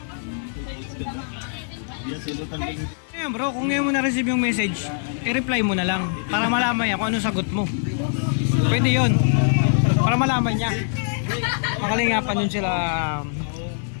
Ayan bro, kung ngayon mo na-receive yung message, i-reply mo na lang para malaman niya kung anong sagot mo. Pwede yun. Para malaman niya. Makalingapan yun sila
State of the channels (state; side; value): silent; right; digital silence